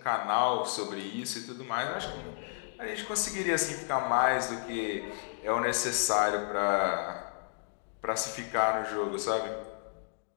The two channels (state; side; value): silent; right; digital silence